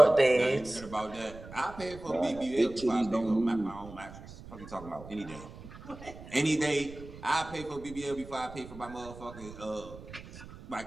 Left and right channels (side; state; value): right; noise; rumble, 16 dB below the sound